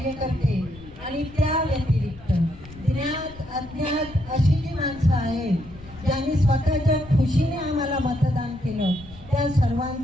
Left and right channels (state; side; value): noise; left; rumble, 19 dB below the sound